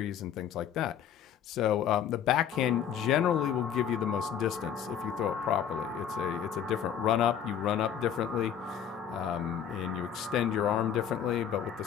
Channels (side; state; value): right; quieter; 8.9 dB